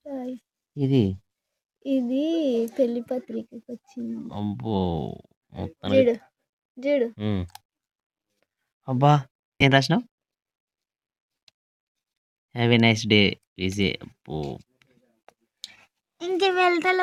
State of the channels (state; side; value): identical; both; correlation 1.00